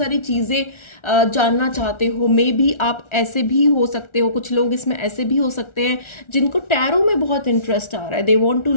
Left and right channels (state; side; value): late; right; 1.4 ms